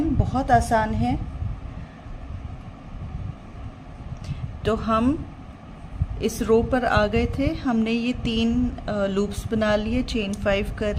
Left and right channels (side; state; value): both; identical; correlation 1.00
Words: बहुत आसान है। तो हम इस रो पर आ गए थे, हमने ये 3 लूप्स बना लिए, चेन 5 कर